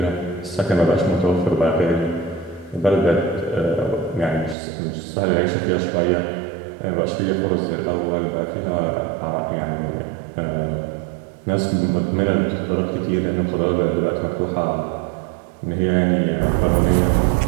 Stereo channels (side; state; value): left; drops out; at 4.5 s